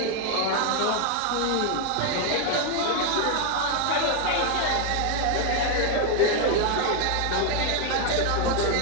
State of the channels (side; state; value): both; different; correlation 0.01